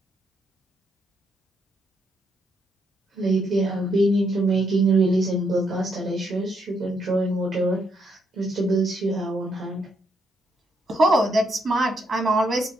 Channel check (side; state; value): both; normal; correlation 0.76